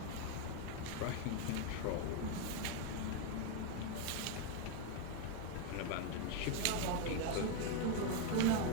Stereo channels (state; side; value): different; both; correlation 0.01